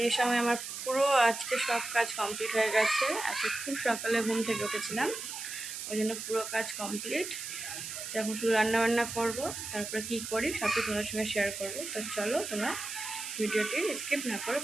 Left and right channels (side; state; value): right; noise; hiss, 7 dB below the sound